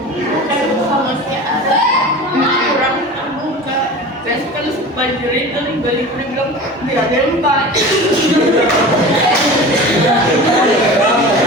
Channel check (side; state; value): both; normal; correlation 0.34